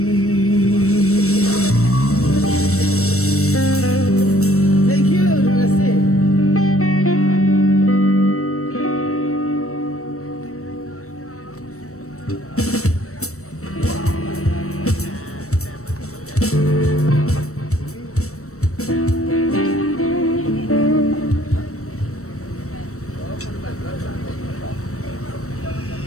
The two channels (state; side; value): late; right; 0.64 ms